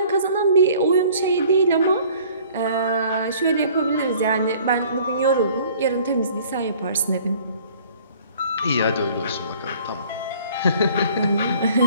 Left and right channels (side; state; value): both; inverted; correlation -0.53